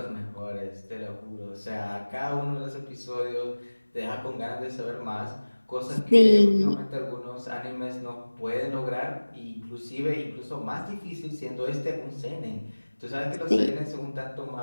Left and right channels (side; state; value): both; inverted; correlation -1.00